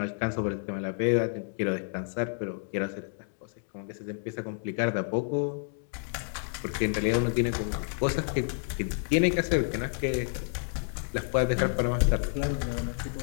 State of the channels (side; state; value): right; silent; 58 dB below the other